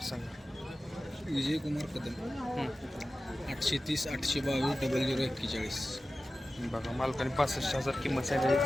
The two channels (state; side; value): normal; both; correlation 0.95